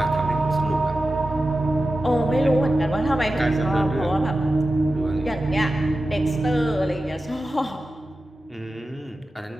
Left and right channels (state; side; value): normal; both; correlation 0.93